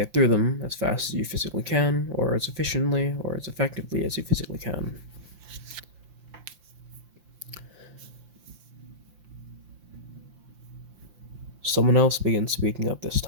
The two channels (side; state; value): left; late; 5.8 ms